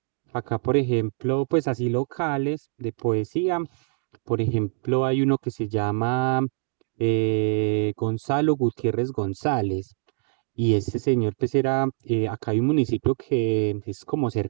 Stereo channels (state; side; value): silent; left; digital silence